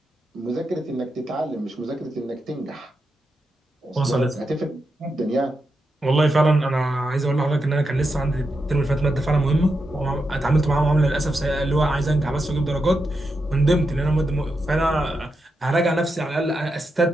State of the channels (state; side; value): normal; both; correlation 0.86